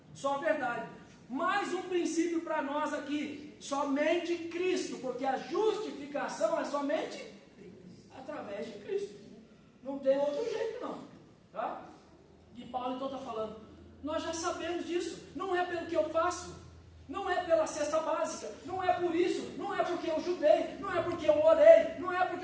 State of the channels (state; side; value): identical; both; correlation 1.00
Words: só a verdade. Mais um princípio para nós aqui, somente Cristo, porque a justificação é somente através de Cristo. Não tem outro jeito não. Tá? E Paulo então está falando, nós já sabemos disso, não é pelo que eu faço, não é pela cesta básica, não é por isso, não é porque eu judei, não é porque eu orei, não é porque